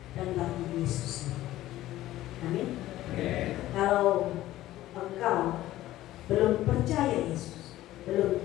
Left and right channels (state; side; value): quieter; right; 15.0 dB